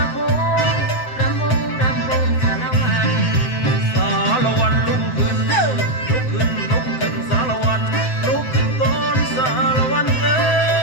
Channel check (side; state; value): right; late; 7.9 ms